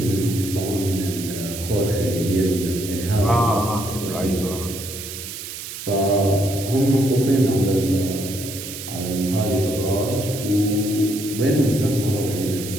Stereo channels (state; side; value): noise; right; hiss, 9 dB below the sound